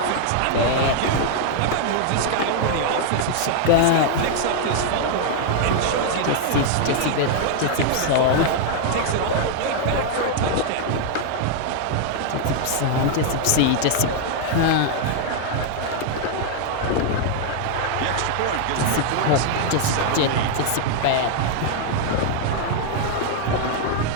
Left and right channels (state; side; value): different; both; correlation 0.00